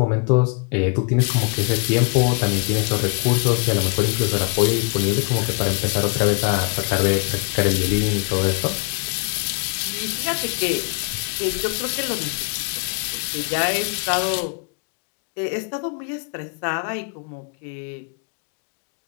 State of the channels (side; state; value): right; quieter; 35.5 dB